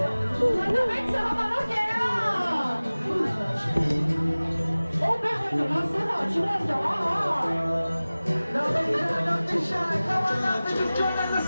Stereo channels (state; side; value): inverted; both; correlation -0.98